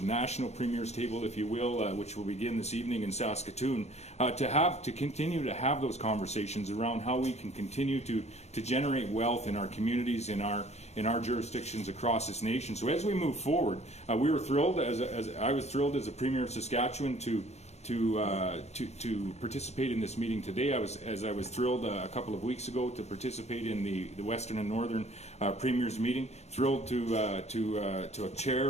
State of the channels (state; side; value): late; right; 0.32 ms